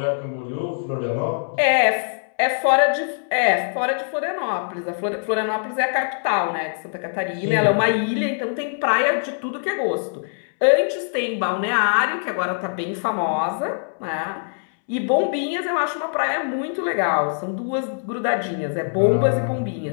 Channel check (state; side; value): silent; right; 64 dB below the other